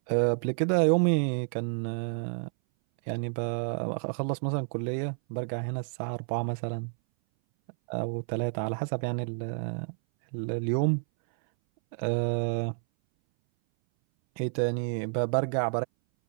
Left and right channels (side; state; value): left; silent; 58 dB below the other